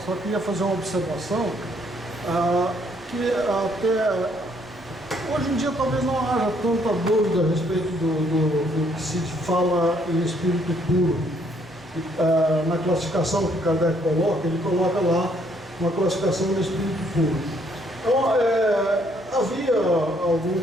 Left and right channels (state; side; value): noise; right; hum, 26 dB below the sound